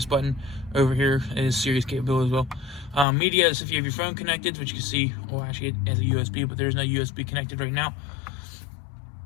button over here. It is Sirius capable as well. Media is if you have your phone connected, which you can see, well, actually it has a USB, but there's no USB connected right now.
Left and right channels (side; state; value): right; drops out; at 3.1 s